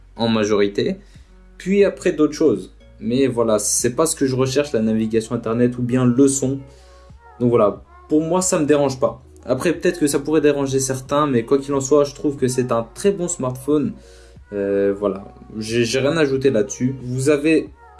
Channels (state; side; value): identical; both; correlation 1.00